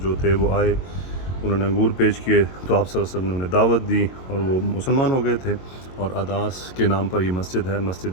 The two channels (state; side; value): late; right; 22 ms